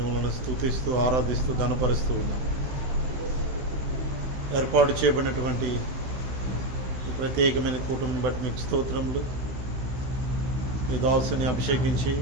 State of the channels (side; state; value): left; late; 16 ms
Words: స్తుతిస్తూ ఆరాధిస్తూ ఘనపరుస్తూ ఉన్నాం. ఏర్పాటు చేయబడినటువంటి ఈ ప్రత్యేకమైన కూటమిని బట్టి మీకు స్తోత్రములు. మీ దాసుని అభిషేకించి